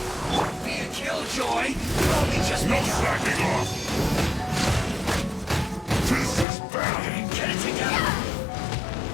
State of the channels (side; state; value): right; drops out; at 6.5 s